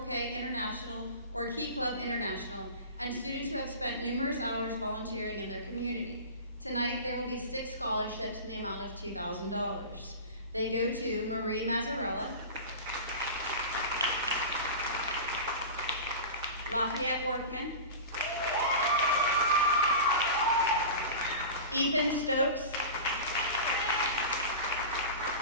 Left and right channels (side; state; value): both; inverted; correlation -0.31